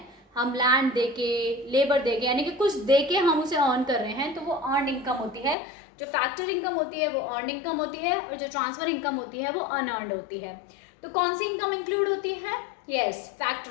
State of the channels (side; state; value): right; drops out; at 5.6 s